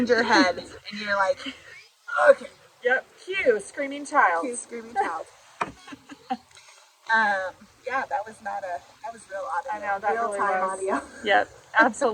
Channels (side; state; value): both; identical; correlation 1.00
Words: your head, and you're like, okay. Yep. Cue screaming child. Cue screaming child. Yeah, that was real audio. I know, that real really time was. audio. Yep,